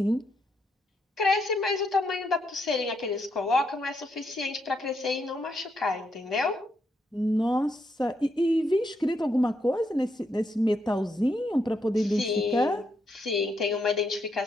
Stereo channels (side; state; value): both; normal; correlation 0.79